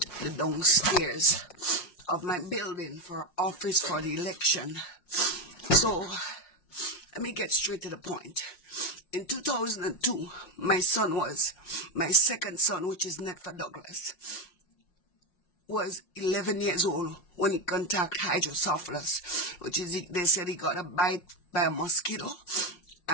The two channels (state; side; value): late; right; 5.6 ms